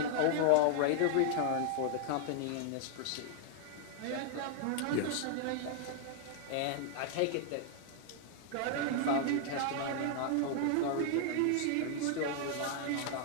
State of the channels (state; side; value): different; both; correlation 0.00